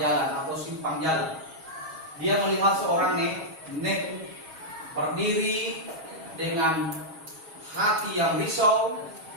atau simpang jalan, dia melihat seorang nenek berdiri dengan hati yang risau,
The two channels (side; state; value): left; late; 6.3 ms